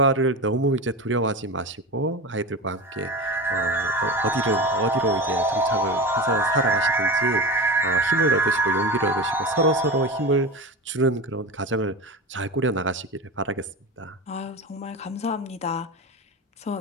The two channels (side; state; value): both; normal; correlation 0.26